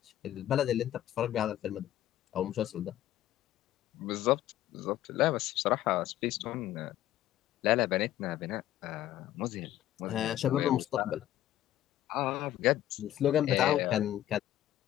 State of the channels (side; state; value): right; quieter; 13.1 dB